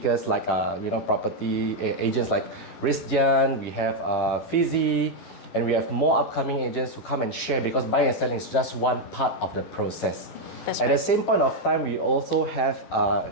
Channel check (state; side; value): late; right; 12 ms